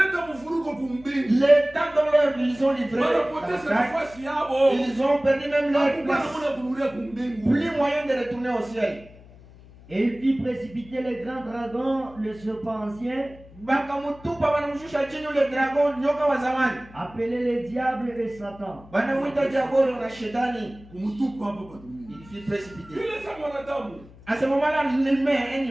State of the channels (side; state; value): left; noise; hum, 21 dB below the sound